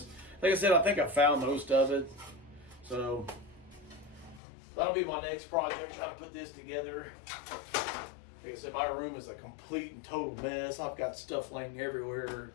Like I said, I think I found most of it. So that'll be my next project, try to put this together. Like I said, my room is a complete and total mess. I've got stuff laying everywhere.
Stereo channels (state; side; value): drops out; right; at 4.4 s